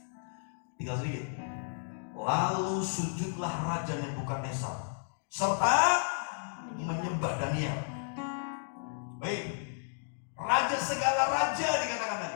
Tinggal sedikit. Lalu sujudlah Raja Nebukadnezar serta menyembah Daniel. Baik, raja segala raja dikatakan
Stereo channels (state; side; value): silent; right; digital silence